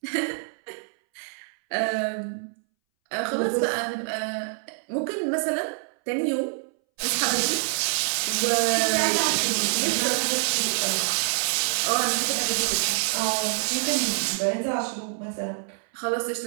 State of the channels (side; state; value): left; silent; 61 dB below the other